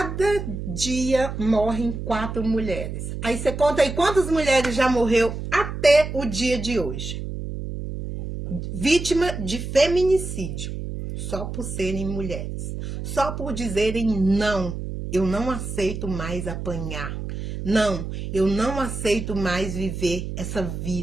dia morrem 4 mulheres. Aí você conta aí quantas mulheres já morreu até o dia de hoje. Vítima de feminicídio. Só por serem mulheres. Só por dizerem não, eu não aceito mais apanhar. Não, eu não aceito mais viver essa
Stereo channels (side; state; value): right; noise; hum, 6 dB below the sound